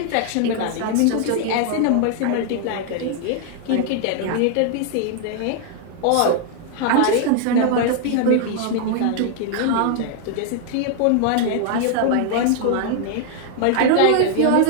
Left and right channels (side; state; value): both; different; correlation 0.00